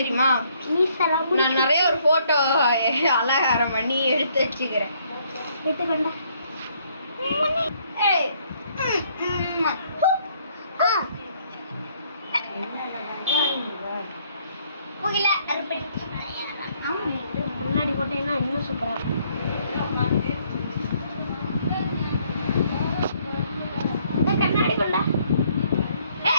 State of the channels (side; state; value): both; inverted; correlation -0.67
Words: நான் நிறைய ஒரு போட்டோ அலங்காரம் பண்ணி எடுத்து வச்சுக்கிறேன் எடுத்துக்கண்டா முன்னாடி போட்டீங்கன்னா இன்னும் சூப்பரா கண்ணாடி கொண்டா